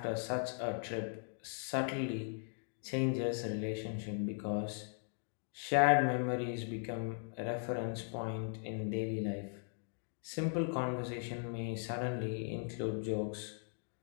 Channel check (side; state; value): right; silent; 52 dB below the other